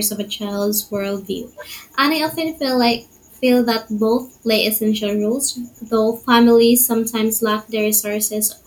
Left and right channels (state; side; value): identical; both; correlation 1.00